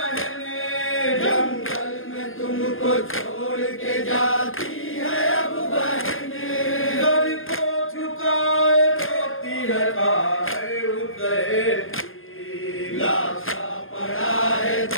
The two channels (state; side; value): late; right; 0.60 ms